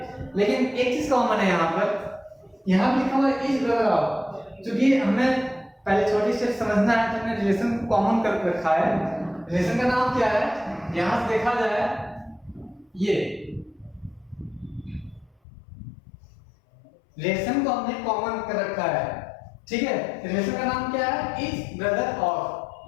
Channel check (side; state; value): right; drops out; at 15.4 s